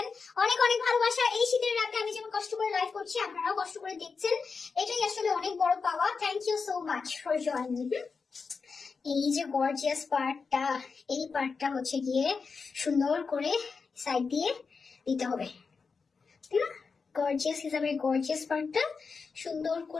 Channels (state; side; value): quieter; right; 5.0 dB